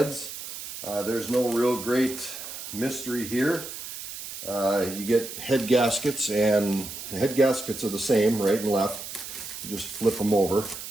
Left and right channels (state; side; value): noise; right; hiss, 9 dB below the sound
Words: There's no real great mystery here. You get head gaskets, and the head gaskets are the same, right and left. You just flip them over.